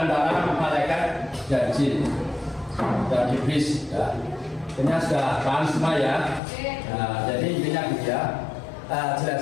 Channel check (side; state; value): right; drops out; at 6.4 s